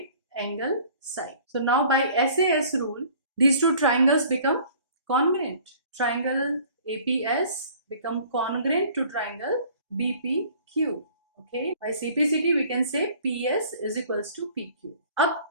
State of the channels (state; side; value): inverted; both; correlation -0.51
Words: angle, side. So now by SAS rule, these two triangles become congruent. Triangle APS become congruent to triangle BPQ. Okay, by CPCT we can say PS is equals to PQ. अब